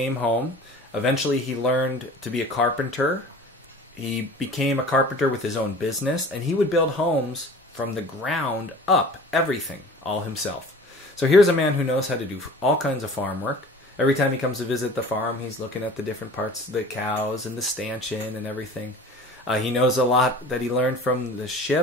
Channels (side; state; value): both; normal; correlation 0.43